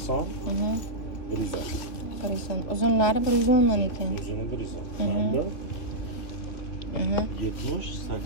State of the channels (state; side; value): late; right; 3.0 ms